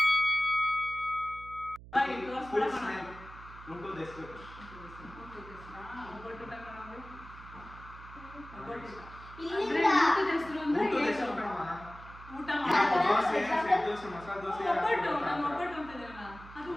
ಊಟದ ಹೆಸರು ದೋಸೆ, ಸೆಟ್ ದೋಸೆ, ಮಸಾಲೆ ದೋಸೆ.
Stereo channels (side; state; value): right; noise; hum, 17 dB below the sound